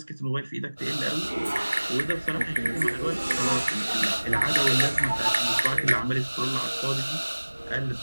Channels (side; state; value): both; inverted; correlation -1.00